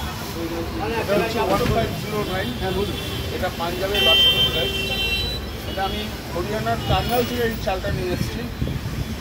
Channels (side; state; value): both; identical; correlation 1.00